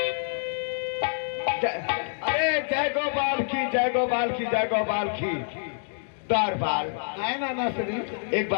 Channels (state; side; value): silent; right; digital silence